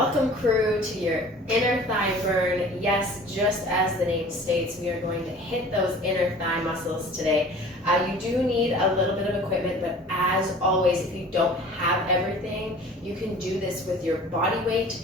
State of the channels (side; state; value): both; normal; correlation 0.45